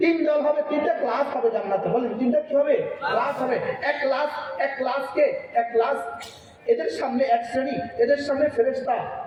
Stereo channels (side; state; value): both; identical; correlation 1.00